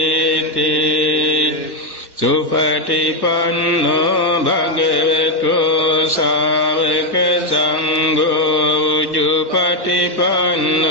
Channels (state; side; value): late; right; 1.2 ms